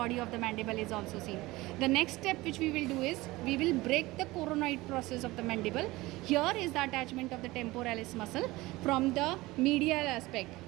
of the mandible is also seen. The next step which we will do is we will break the coronoid process of the mandible. Here is the attachment of the temporalis muscle from the medial aspect,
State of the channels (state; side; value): quieter; left; 20.0 dB